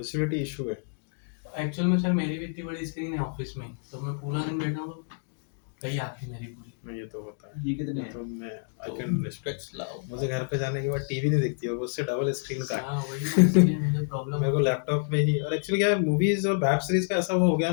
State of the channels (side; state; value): right; silent; digital silence